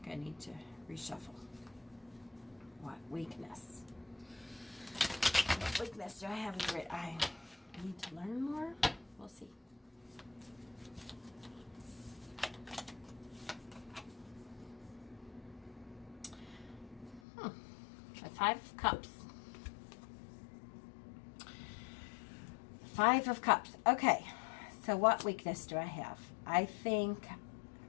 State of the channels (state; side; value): drops out; right; at 17.2 s